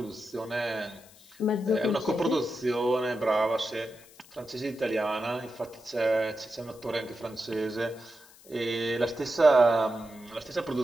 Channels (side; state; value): left; noise; hiss, 24 dB below the sound